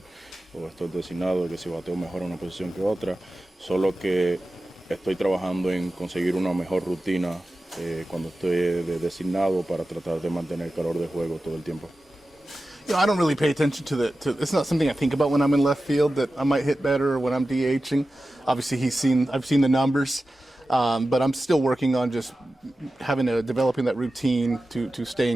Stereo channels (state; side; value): normal; both; correlation 0.94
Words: o estoy designado, que si bateo mejor en una posición que otra. Solo que estoy trabajando en conseguir una mejor rutina cuando estoy designado para tratar de mantener el calor de juego todo el tiempo. I don't really pay attention to it's not something I think about when I'm in left field that I might hit better or when I'm DHing. Obviously, I've seen the numbers. But I'm still working on just developing that routine to stay